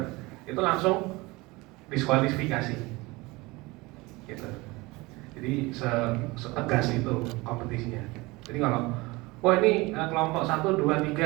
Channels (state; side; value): quieter; left; 22.9 dB